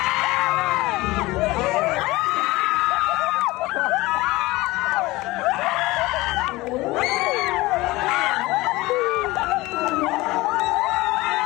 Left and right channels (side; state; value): right; quieter; 20.2 dB